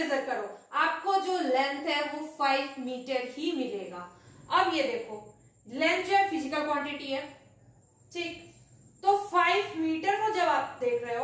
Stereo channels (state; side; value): identical; both; correlation 1.00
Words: करो, आपको जो लेंथ है वो 5 मीटर ही मिलेगा। अब ये देखो, लेंथ जो है फिजिकल क्वांटिटी है, ठीक। तो 5 मीटर को जब आप देख रहे